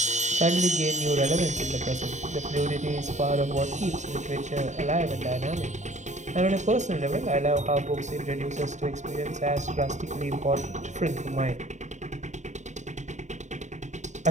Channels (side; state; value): left; late; 0.34 ms